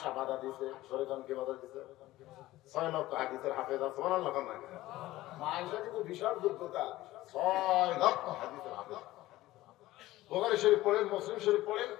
বাধা দিছে। শরীয়ত কে বাধা দিছে? 6 লক্ষ হাদিসের হাফেজা। সুবহানাল্লাহ। মা আয়েশা কিন্তু বিশাল যোগ্যতা, 6 লক্ষ হাদিসের হাফেজা। বুখারী শরীফ পড়েন, মুসলিম শরীফ পড়েন,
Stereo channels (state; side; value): quieter; right; 16.7 dB